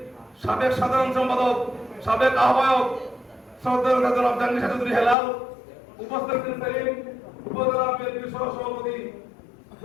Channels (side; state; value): right; drops out; at 5.2 s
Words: সাবেক সাধারণ সম্পাদক, সাবেক আহ্বায়ক শ্রদ্ধেয় জনাব জাহাঙ্গীর চৌধুরী হেলাল, উপস্থিত সেলিম উপজেলা বিএনপির সহ সভাপতি